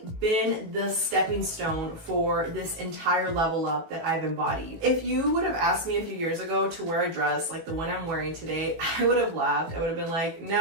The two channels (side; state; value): left; late; 18 ms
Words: been the stepping stone for this entire level up that I've embodied. If you would have asked me a few years ago to wear a dress like the one I'm wearing today, I would have laughed. I would have been like,